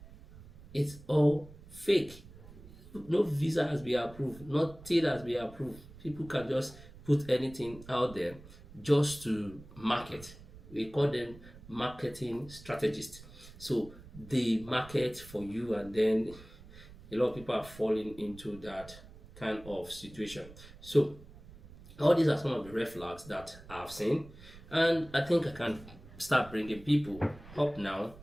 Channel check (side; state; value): right; noise; rumble, 19 dB below the sound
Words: It's all fake. No visa has been approved. Nothing has been approved. People can just put anything out there just to market. We call them marketing strategists. So they market for you, and then a lot of people are falling into that kind of situation. So all these are some of the red flags that I've seen, and I think I can start bringing people up now